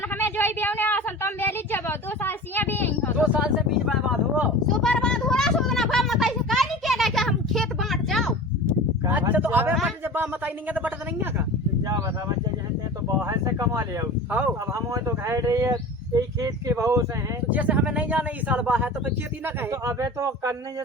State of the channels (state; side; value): normal; both; correlation 0.35